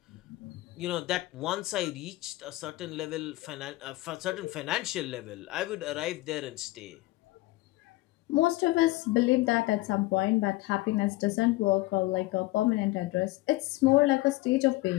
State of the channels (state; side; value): quieter; right; 19.3 dB